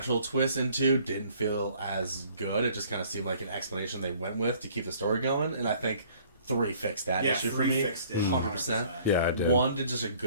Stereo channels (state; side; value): inverted; both; correlation -0.56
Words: twist in 2 didn't feel as good. It just kind of seemed like an explanation they went with to keep the story going, and I think 3 fixed that issue for me, 100%. Yeah, I did. 1 did just a